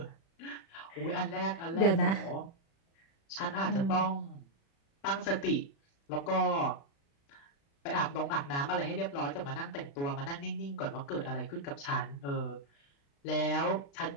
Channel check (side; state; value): right; late; 36 ms